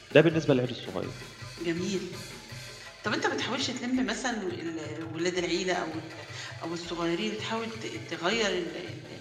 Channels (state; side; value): identical; both; correlation 1.00